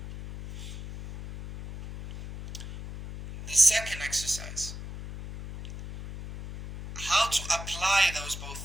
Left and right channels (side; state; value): left; noise; hum, 10 dB below the sound